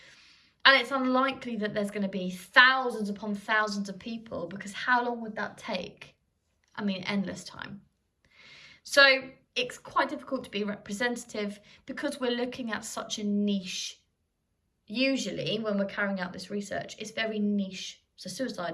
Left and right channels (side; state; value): both; identical; correlation 1.00